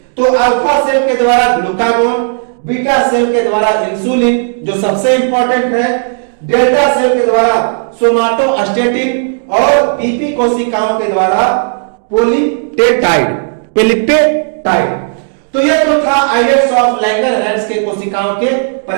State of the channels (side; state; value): left; silent; 73 dB below the other